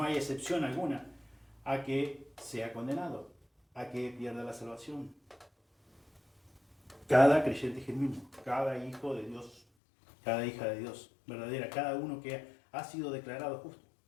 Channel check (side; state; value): right; drops out; at 9.6 s